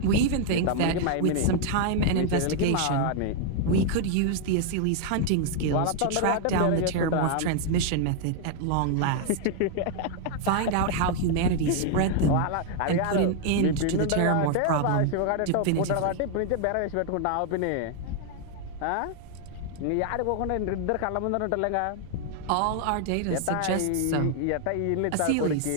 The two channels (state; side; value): different; both; correlation 0.00